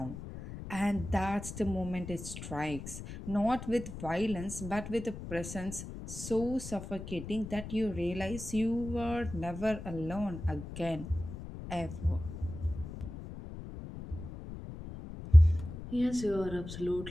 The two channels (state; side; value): noise; left; rumble, 10 dB below the sound